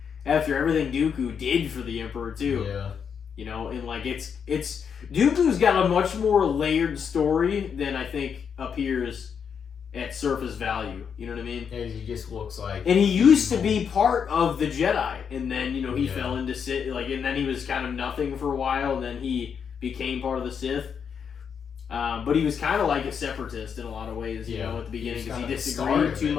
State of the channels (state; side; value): quieter; right; 7.0 dB